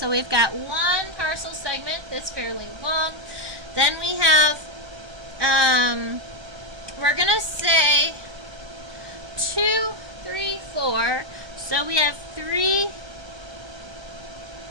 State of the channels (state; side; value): late; left; 1.2 ms